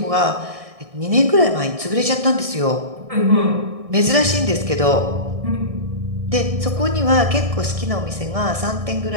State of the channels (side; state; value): left; late; 1.6 ms